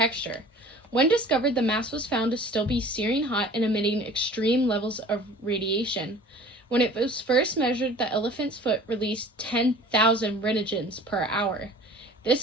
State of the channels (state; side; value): normal; both; correlation 0.45